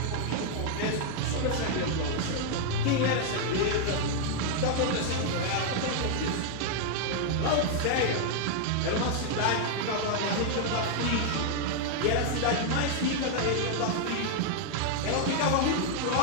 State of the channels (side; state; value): both; different; correlation 0.00